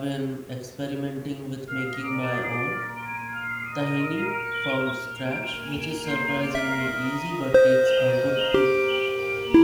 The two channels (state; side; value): identical; both; correlation 1.00